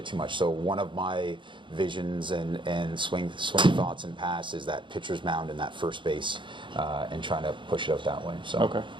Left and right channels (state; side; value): late; left; 0.23 ms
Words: too much. So one of my visions and swing thoughts and pass is that pitcher's mound in that first base, and trying to push it out that way. So